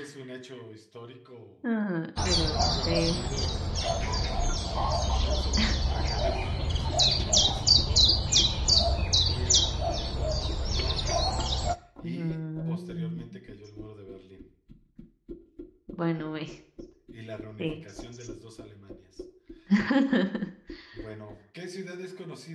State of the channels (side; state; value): both; identical; correlation 1.00